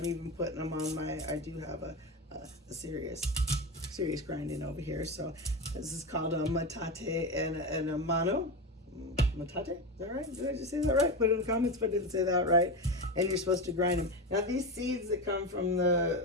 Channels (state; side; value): normal; both; correlation 0.19